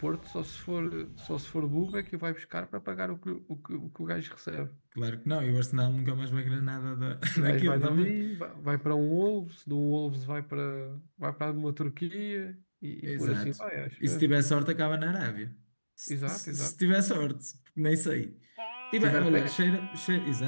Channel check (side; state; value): both; inverted; correlation -1.00